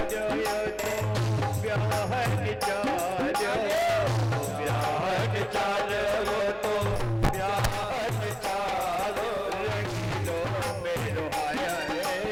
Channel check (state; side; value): identical; both; correlation 1.00